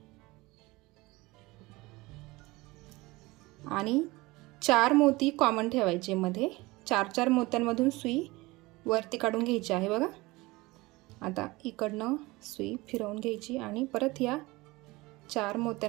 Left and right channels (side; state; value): left; quieter; 21.7 dB